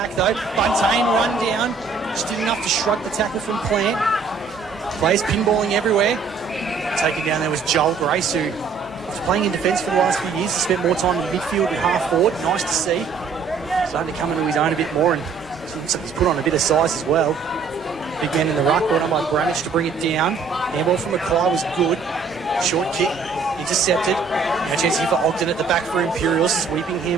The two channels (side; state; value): left; quieter; 5.1 dB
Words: though. Buntain run down. Just did enough to shrug the tackle from Plant. Players pinballing everywhere. Taken down there was Joel Grace, who was playing in defence for the last few years. He spent more time in midfield and half forward. Nice to see. Starting to come into his own a bit more, and he's put on a bit of size as well. Big man in the ruck, brought on by Bramage to bring it down. Handball from Mackay was good. Short kick, intercepted. Now chance here for Ogden at the back for Imperials. Sweeping